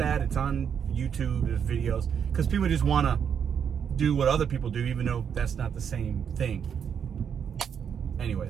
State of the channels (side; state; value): left; quieter; 7.7 dB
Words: It's on YouTube, there's videos, because people just want to do what other people do, even though that's not the same thing.